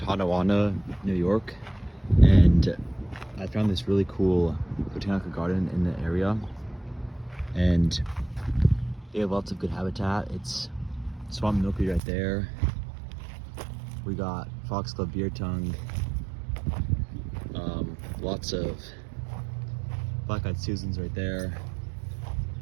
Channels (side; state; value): left; drops out; at 12.0 s